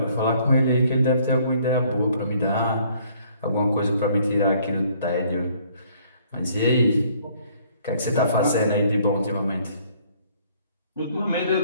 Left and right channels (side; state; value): both; inverted; correlation -0.61